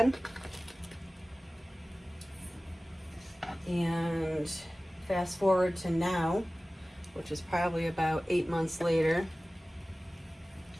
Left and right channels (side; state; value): both; normal; correlation 0.97